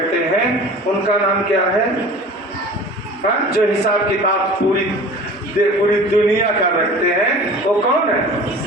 हैं, उनका नाम क्या है? जो हिसाब किताब पूरी दुनिया का रखते हैं, वो कौन है?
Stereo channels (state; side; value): normal; both; correlation 0.41